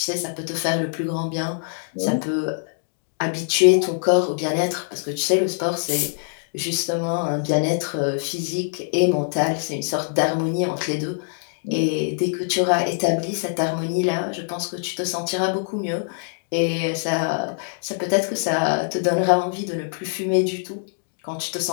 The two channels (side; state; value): right; silent; digital silence